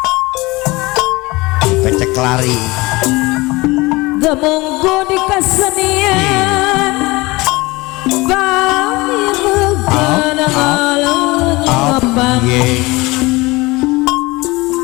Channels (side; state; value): right; quieter; 22.5 dB